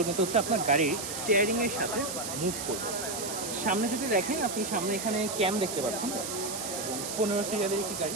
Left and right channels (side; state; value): right; noise; hiss, 6 dB below the sound